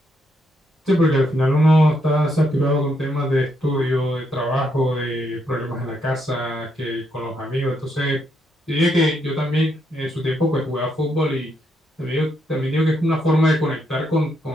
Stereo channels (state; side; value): normal; both; correlation 0.77